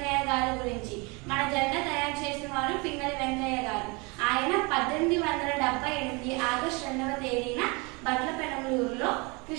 గారి గురించి. మన జెండా తయారు చేసిన వారు పింగళి వెంకయ్య గారు. ఆయన 1878 ఆగస్టు 2వ తేదీన బట్లపెనమలూరులో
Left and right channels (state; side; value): quieter; left; 28.3 dB